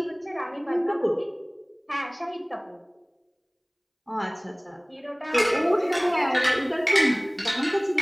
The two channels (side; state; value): both; identical; correlation 1.00